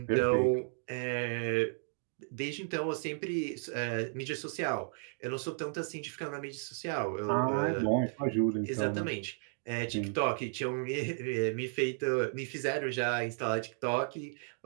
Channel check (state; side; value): silent; left; digital silence